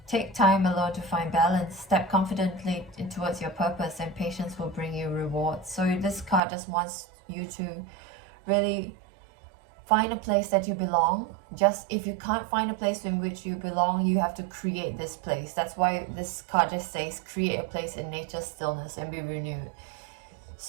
Take time alone to find balance. Step confidently towards your purpose, and patience will bring you rewards. So this card just wants you to really find a place that you belong. Just if you can't find a place in which you belong, you have to create this place. That's why this card just says, create a place in nature's stillness and be renewed.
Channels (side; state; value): left; drops out; at 6.4 s